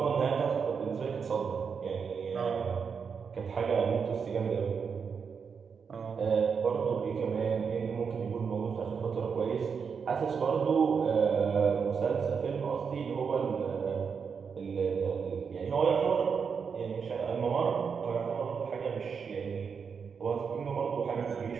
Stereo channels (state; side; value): quieter; left; 6.1 dB